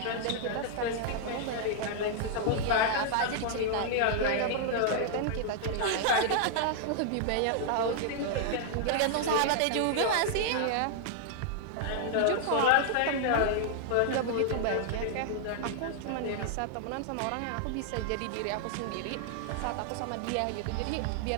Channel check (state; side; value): different; both; correlation -0.01